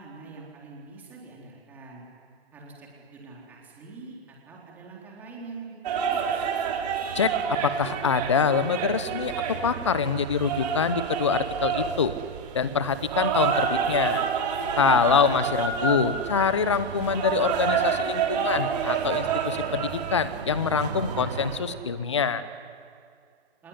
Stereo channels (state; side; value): normal; both; correlation 0.07